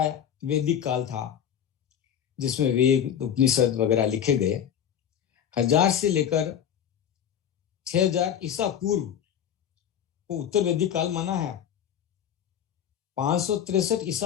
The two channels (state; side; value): quieter; right; 9.3 dB